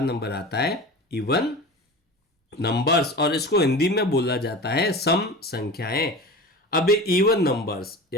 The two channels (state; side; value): normal; both; correlation 0.33